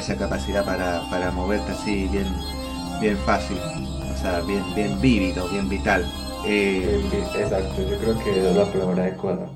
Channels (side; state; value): both; identical; correlation 1.00